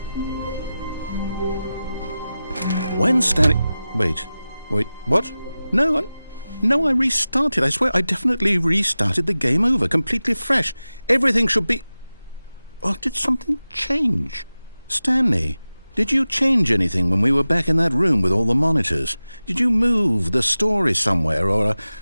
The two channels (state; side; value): inverted; both; correlation -0.95